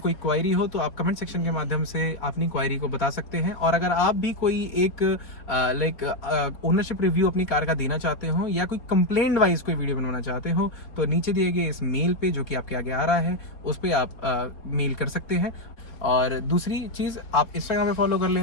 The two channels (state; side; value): late; right; 4.3 ms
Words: क्वायरी हो तो आप कमेंट सेक्शन के माध्यम से अपनी क्वायरी को बता सकते हैं। और अगर आप भी कोई एक ओनरशिप रिव्यू अपनी कार का देना चाहते हो या कोई कंप्लेंट वाइज कोई वीडियो बनवाना चाहते हो तो नीचे दिए गए इस मेल पे जो कि आपके आगे आ रहा है उस पर आप मेल कर सकते हैं। और दूसरी चीज़, आप इंस्टाग्राम पे फॉलो कर